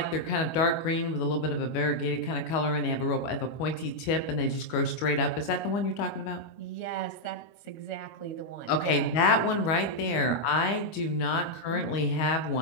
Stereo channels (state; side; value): late; right; 25 ms